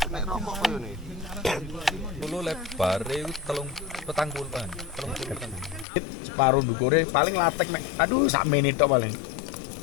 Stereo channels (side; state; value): right; drops out; at 5.9 s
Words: Nek rokok koyo ne. Kulo lebar iku 30-an. Separuh ndukure paling latek mek. Aduh sak menit tok paling.